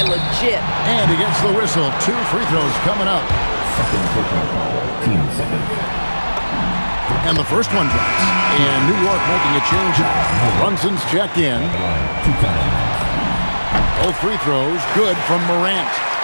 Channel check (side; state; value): both; inverted; correlation -1.00